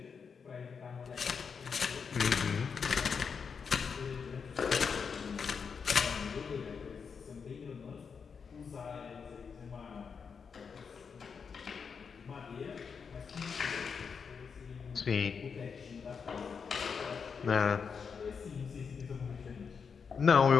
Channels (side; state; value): right; quieter; 6.0 dB